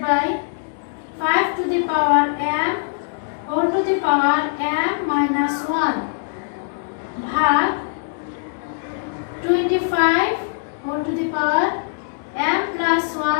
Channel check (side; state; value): right; silent; 65 dB below the other